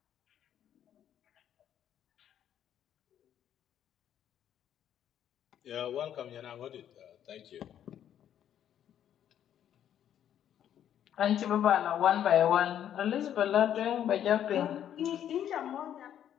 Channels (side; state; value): right; quieter; 10.2 dB